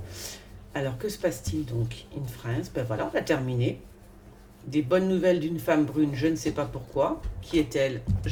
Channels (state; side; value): identical; both; correlation 1.00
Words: Alors, que se passe-t-il donc in France? Ben voilà, on a terminé. Des bonnes nouvelles d'une femme brune, je ne sais pas pourquoi. Qui est-elle?